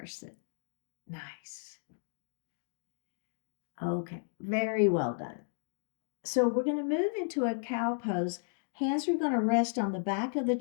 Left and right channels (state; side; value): silent; right; digital silence